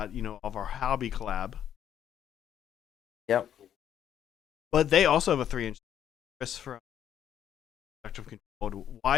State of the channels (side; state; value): right; quieter; 9.9 dB